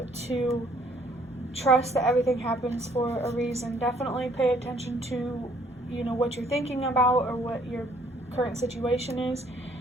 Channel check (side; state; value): both; normal; correlation 0.63